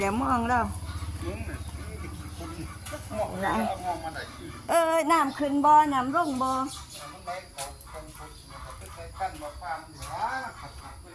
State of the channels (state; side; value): identical; both; correlation 1.00